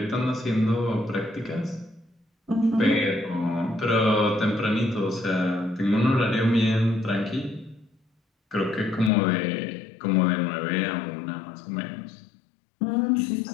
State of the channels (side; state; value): right; drops out; at 9.1 s